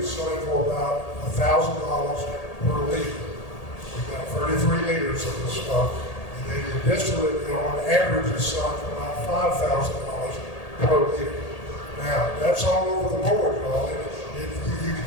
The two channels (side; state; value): right; late; 1.8 ms